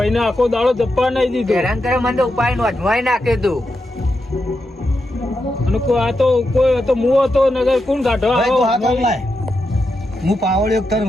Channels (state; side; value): normal; both; correlation 0.86